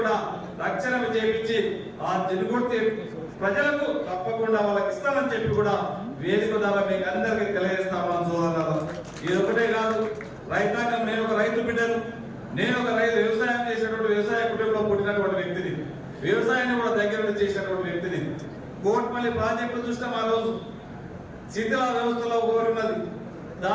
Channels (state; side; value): identical; both; correlation 1.00